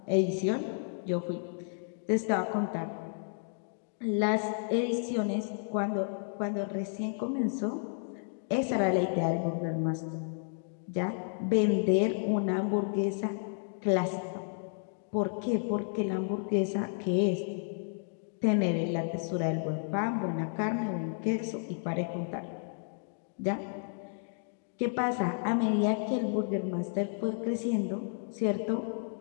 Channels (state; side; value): silent; right; digital silence